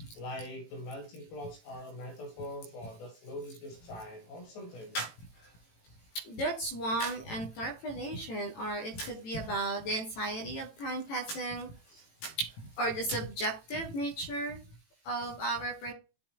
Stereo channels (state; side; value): late; right; 18 ms